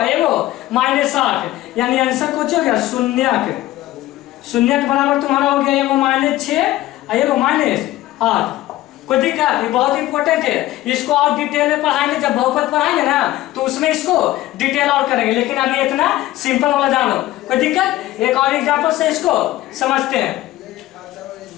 एगो -8, यानी आंसर कुछ हो गया शून्य के बराबर तुम्हारा हो गया एगो -6 एगो -8। कोई दिक्कत, ये बहुत इंपॉर्टेंट है, इसको और डिटेल में पढ़ाएंगे, जब बहुपद पढ़ाएंगे ना तो उसमें इसको डिटेल और करेंगे, लेकिन अभी इतना सिंपल वाला जानो। कोई दिक्कत, एक और एग्जांपल से इसको समझते हैं।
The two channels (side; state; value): right; quieter; 15.9 dB